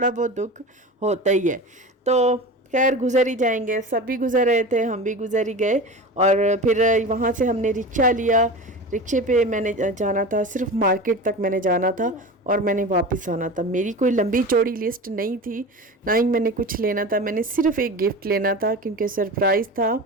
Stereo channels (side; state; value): both; normal; correlation 0.31